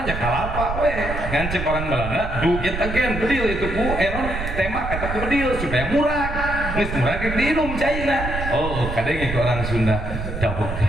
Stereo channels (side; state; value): right; noise; rumble, 5 dB below the sound